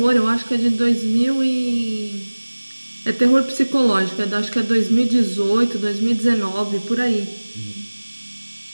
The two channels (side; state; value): both; inverted; correlation -1.00